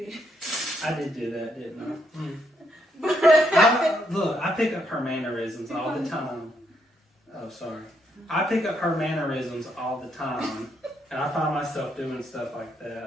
I did do that, didn't I? Look, I pick up her mannerisms all the time. Oh, sorry. I pick up her mannerisms all the time, and I find myself doing stuff like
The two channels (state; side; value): normal; both; correlation 0.76